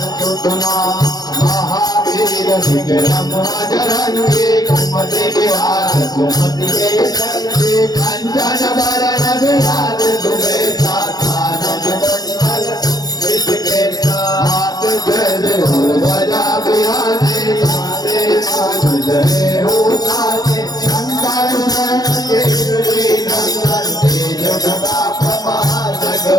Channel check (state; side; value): late; right; 0.19 ms